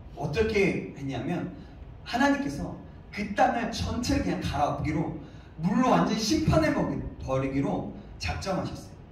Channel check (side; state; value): both; identical; correlation 1.00